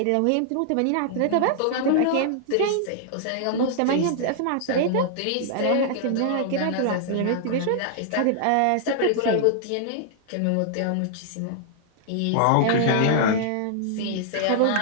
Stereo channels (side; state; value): both; different; correlation -0.01